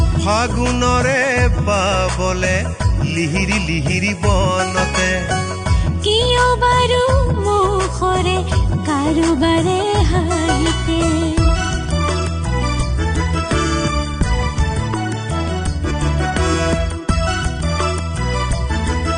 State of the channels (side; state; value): both; identical; correlation 1.00